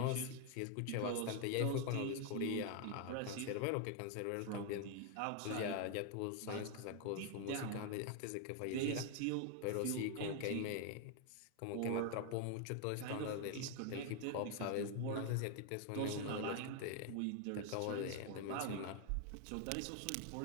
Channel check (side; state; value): both; different; correlation 0.00